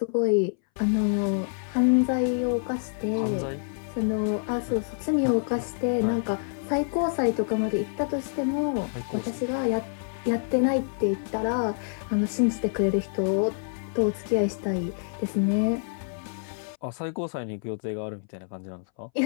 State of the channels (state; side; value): silent; right; 60 dB below the other